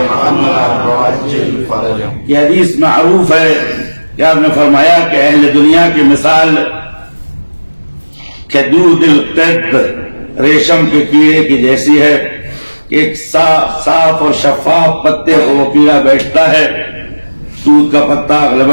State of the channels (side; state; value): both; inverted; correlation -1.00